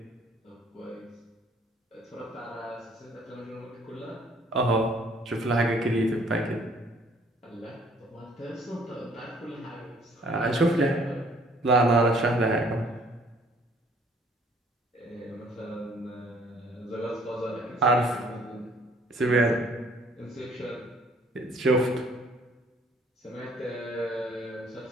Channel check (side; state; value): both; normal; correlation 0.60